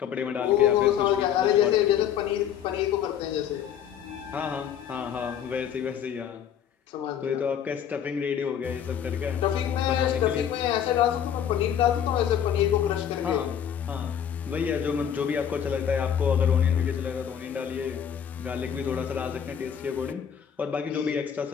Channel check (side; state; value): right; quieter; 8.9 dB